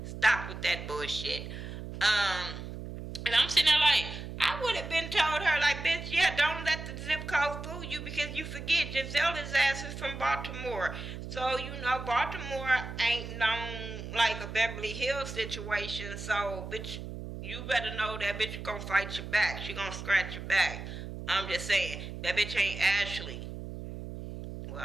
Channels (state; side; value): noise; right; hum, 9 dB below the sound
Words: Stop with that bullshit. And I'm sitting there like, I would have been told her, like, bitch, yeah, don't let the zip code fool you, because you forget Giselle's ass is from Baltimore. So, you know, Baltimore ain't known like a Beverly Hills situation. So, bitch, you better know that bitch gonna fight your back. She gonna scratch your back. I'm just saying, that bitch ain't Ashley. Well,